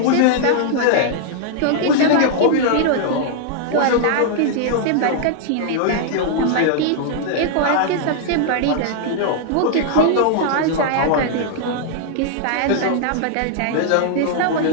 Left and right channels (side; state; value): both; different; correlation -0.01